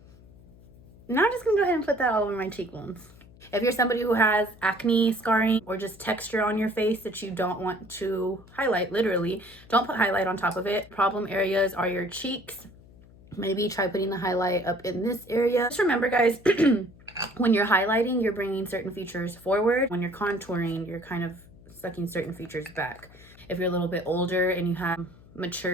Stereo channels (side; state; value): left; noise; hum, 23 dB below the sound